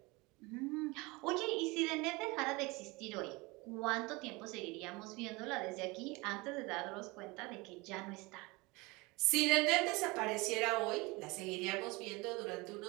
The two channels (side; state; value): left; quieter; 24.4 dB